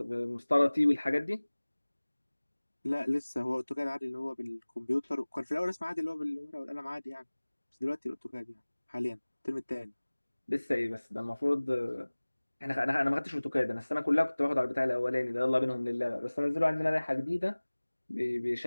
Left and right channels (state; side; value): inverted; both; correlation -1.00